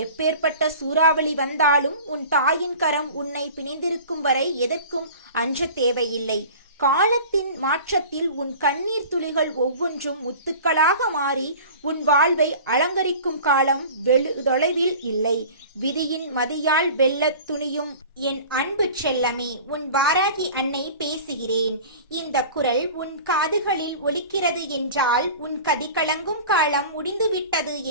எப்பேற்பட்ட சூறாவளி வந்தாலும் உன் தாயின் கரம் உன்னை பிணைந்திருக்கும் வரை எதற்கும் அஞ்ச தேவையில்லை. காலத்தின் மாற்றத்தில் உன் கண்ணீர் துளிகள் ஒவ்வொன்றும் முத்துக்களாக மாறி உன் வாழ்வை அலங்கரிக்கும் காலம் தொலைவில் இல்லை. விதியின் மதியால் வெல்லத் துணியும் என் அன்பு செல்லமே, உன் வாராகி அன்னை பேசுகிறேன். இந்த குரல் உன் காதுகளில் ஒலிக்கிறது என்றால் உன் கதி கலங்கும் காலம் முடிந்துவிட்டது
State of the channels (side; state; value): both; inverted; correlation -0.40